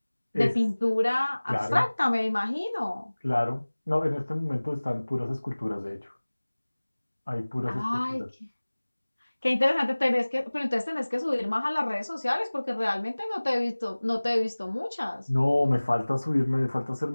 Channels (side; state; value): both; inverted; correlation -1.00